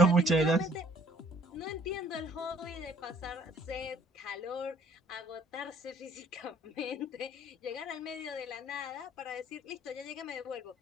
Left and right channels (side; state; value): both; normal; correlation 0.59